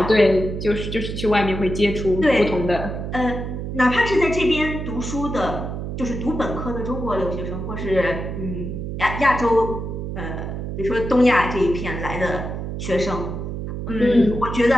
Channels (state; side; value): noise; right; hum, 5 dB below the sound